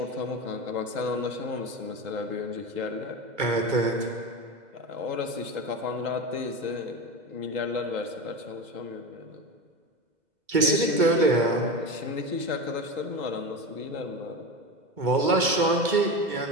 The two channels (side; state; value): left; late; 2.2 ms